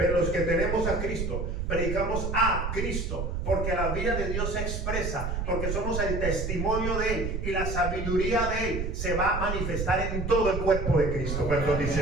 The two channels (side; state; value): right; noise; rumble, 2 dB below the sound